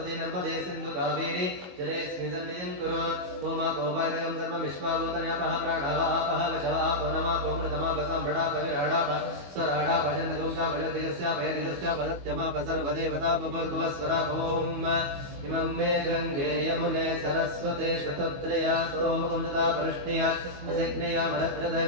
नर्मदे सिन्धु कावेरी जलेऽस्मिन् सन्निधिं कुरु ओमापोपायकं सर्वमिश्वाभूतन्यापः प्राणावापः वशवापो नमापो मृतमापसाम्भृडापविराडाप स्वराडापचन्द्रगुंसापयदिगस्यापयदिगस्यापदत्यमापसर्वदेवतापभर्गुवस्वरापोम् इमं मे गङ्गे यमुने सरस्वते शतत्रया सोमकं सदा परष्णिया असिग्नया मरद्रथ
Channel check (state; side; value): late; left; 22 ms